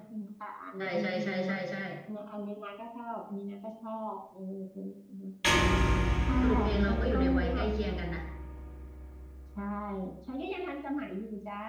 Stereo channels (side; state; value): both; identical; correlation 1.00